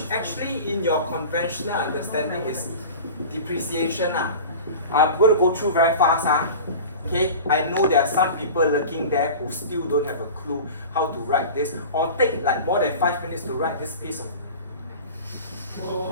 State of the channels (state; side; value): inverted; both; correlation -0.36